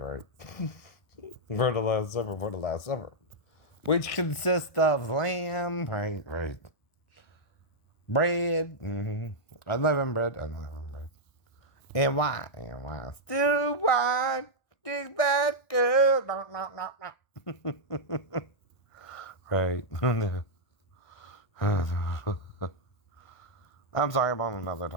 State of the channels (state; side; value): late; right; 1.4 ms